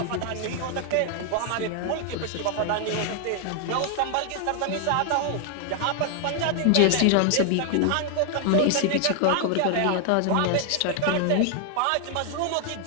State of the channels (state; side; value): different; both; correlation 0.00